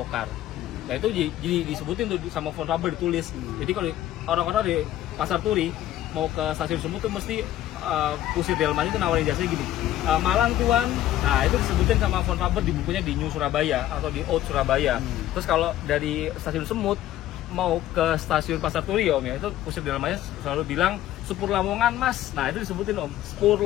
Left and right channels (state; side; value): quieter; right; 13.4 dB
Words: Nah itu jadi disebutin tuh sama phone number ditulis. Jadi kalau orang-orang di Pasar Turi mau ke stasiun Semut tuh mesti Kusir Delman itu nawarin jasanya gini, Malang Tuan. Nah itu disebutin sama phone number di bukunya di New Surabaya atau di Old Surabaya. Terus kalau dari stasiun Semut mau ke stasiun Pasar Turi Om ya, itu Kusir Delmannya selalu bilang Sepur Lamongan Mas. Nah itu disebutin Om, Sepur